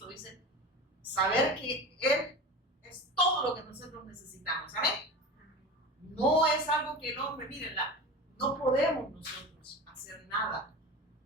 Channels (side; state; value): both; normal; correlation 0.31